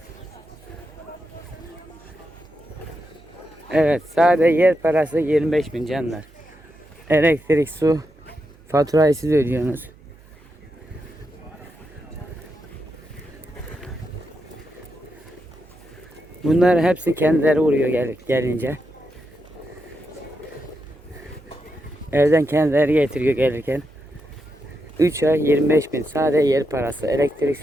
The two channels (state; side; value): noise; right; hum, 26 dB below the sound